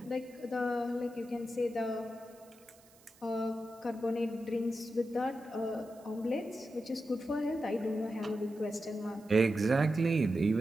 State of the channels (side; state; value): right; noise; hiss, 27 dB below the sound